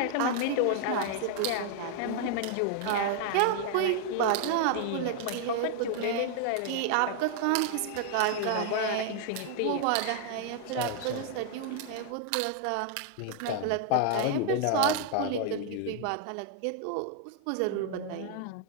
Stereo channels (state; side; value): different; both; correlation 0.00